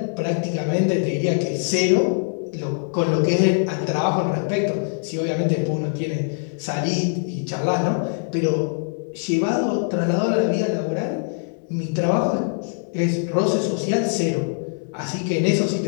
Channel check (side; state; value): right; silent; digital silence